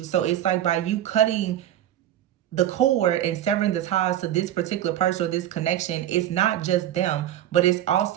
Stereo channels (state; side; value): quieter; left; 11.9 dB